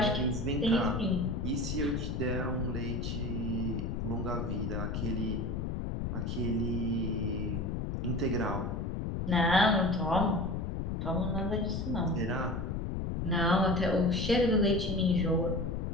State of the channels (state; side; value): noise; left; rumble, 2 dB below the sound